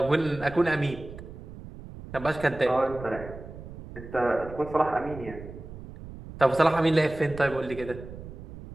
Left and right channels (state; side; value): noise; right; rumble, 14 dB below the sound